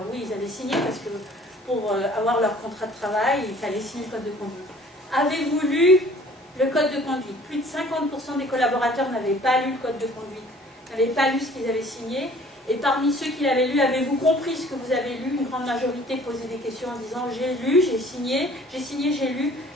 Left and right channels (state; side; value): normal; both; correlation 0.53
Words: oui, ils avaient signé parce que pour avoir leur contrat de travail, il fallait signer le code de conduite. Avez-vous lu le code de conduite? Plus de 50% des collaborateurs n'avaient pas lu le code de conduite, n'avaient pas lu ce qu'ils avaient signé. Et parmi ceux qui l'avaient lu, avez-vous compris ce que vous avez lu? Une grande majorité posait des questions en disant j'ai lu, j'ai signé, j'ai lu,